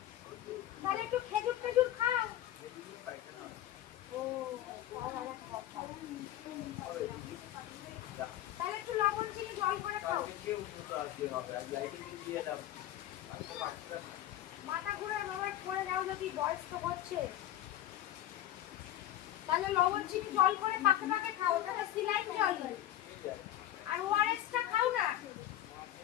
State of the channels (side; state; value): right; quieter; 12.9 dB